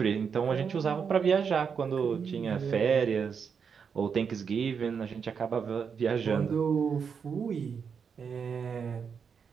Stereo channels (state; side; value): quieter; left; 6.4 dB